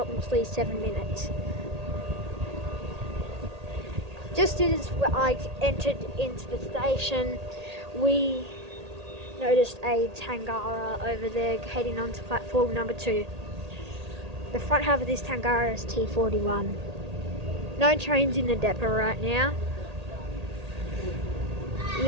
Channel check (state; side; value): late; left; 1.8 ms